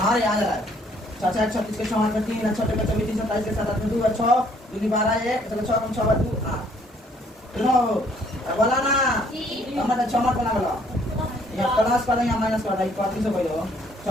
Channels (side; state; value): both; normal; correlation 0.63